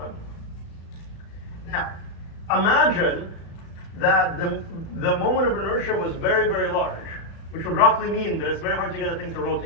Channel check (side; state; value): right; late; 36 ms